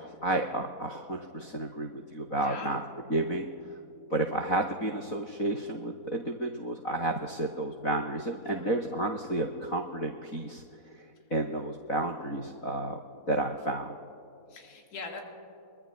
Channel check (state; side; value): late; right; 4.0 ms